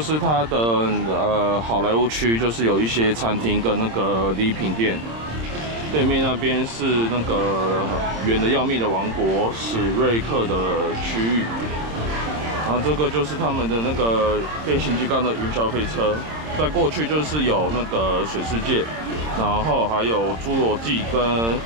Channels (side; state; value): left; late; 26 ms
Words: 它的好莱坞区，就是有一些餐厅跟那个礼品店。对面那边是那个远的要命的王国史瑞克的区域。然后这个就是他们的那个变形金刚的云霄飞车。再过去就是有那个水世界，然后还有侏罗纪跟